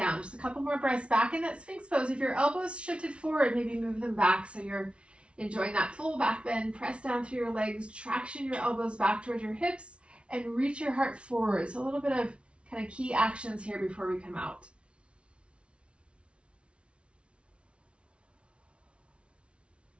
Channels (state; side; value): late; left; 0.059 ms